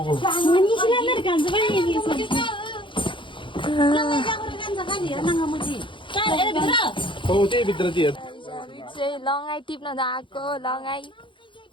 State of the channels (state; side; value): late; right; 0.24 ms